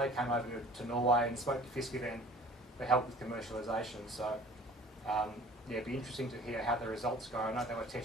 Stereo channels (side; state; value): both; normal; correlation 0.47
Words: came over to Norway and spoke to Fiskeven for help with commercialisation. So yeah, it'd be interesting to hear how the results go. I know they were